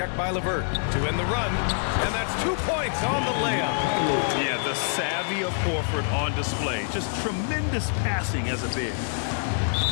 by LeVert to end the run, and that's 2 points on the layup. Yeah, the savvy of Horford on display. Just tremendous passing as a big.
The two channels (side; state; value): right; silent; digital silence